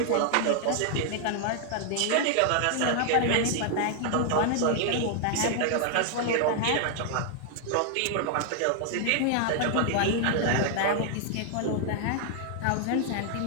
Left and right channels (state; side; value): different; both; correlation 0.00